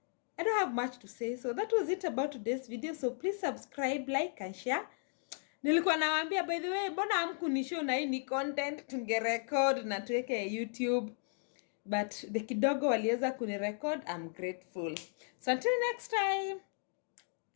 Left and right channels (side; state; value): right; silent; 54 dB below the other